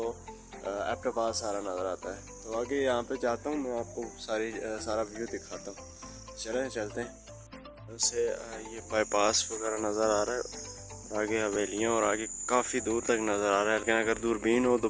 एबटाबाद सारा नज़र आता है। तो आगे यहाँ पे जाता हूँ, मैं आपको सारा व्यू दिखाता हूँ। चलते हैं। उससे ये बाईपास वगैरह नज़र आ रहा है और आगे हवेलियाँ और आगे काफ़ी दूर तक नज़र आ रहा है। लेकिन अगर दूरबीन हो तो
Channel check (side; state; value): both; identical; correlation 1.00